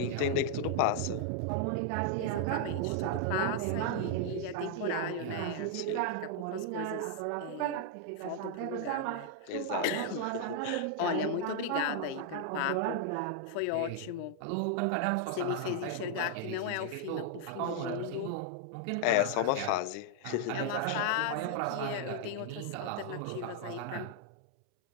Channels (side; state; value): both; different; correlation 0.00